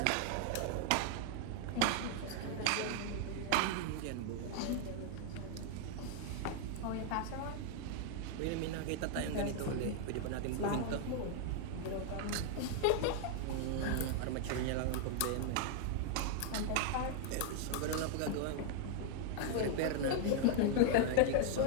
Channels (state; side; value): different; both; correlation 0.00